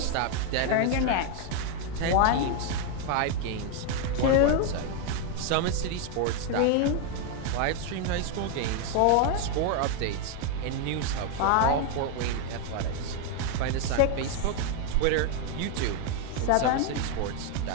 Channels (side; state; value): both; different; correlation 0.01